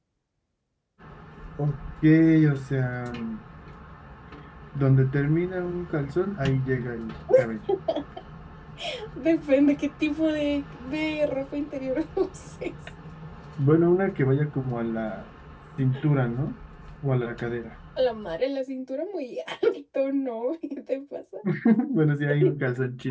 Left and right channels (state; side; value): identical; both; correlation 1.00